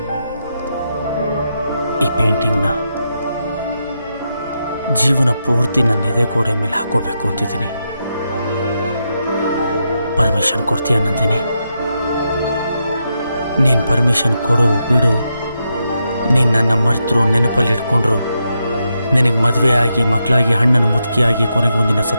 ಈ ಪೇಂಟಿಂಗ್ನ ಜೀವನ ಪೂರ್ತಿ ನನ್ನ ಎದೆ ಗೋಡೆ ಮೇಲೆ ಹಾಕೋಬೇಕು ಅಂತಿದ್ದೀನಿ. ಪರ್ಮಿಷನ್ ಕೊಡ್ತೀಯ ನಂದಿನಿ? ನೀನು ಪರ್ಮಿಷನ್ ಕೊಡು ಬಿಡು. ನೀನು ನನ್ನ ಮರ್ತರು, ನೆನಪಲ್ಲಿ ಇಟ್ಕೊಂಡ್ರು, ನಿನಗೆ ಮದುವೆ ಆಗಿ ಮಕ್ಕಳಾಗಿ ಹಣ್ಣನ್ನು ಮುದುಕಿಯಾಗಿ ಕೊನೆಗೆ ಒಂದಿನ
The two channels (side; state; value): both; inverted; correlation -0.84